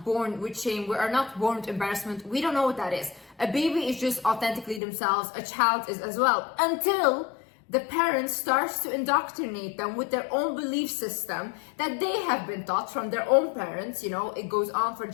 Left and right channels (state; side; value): drops out; right; at 4.8 s